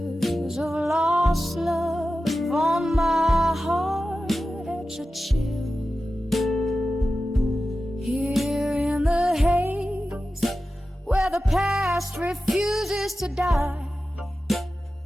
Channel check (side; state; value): both; normal; correlation 0.94